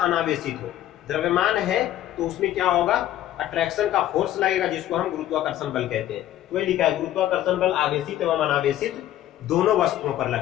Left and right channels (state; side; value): quieter; right; 12.9 dB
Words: अनावेशित हो। द्रव्यमान है तो उसमें क्या होगा, अट्रैक्शन का फोर्स लगेगा, जिसको हम गुरुत्वाकर्षण बल कहते हैं। तो ये लिखा है, गुरुत्वाकर्षण बल आवेशित एवं अनावेशित दोनों वस्तुओं पर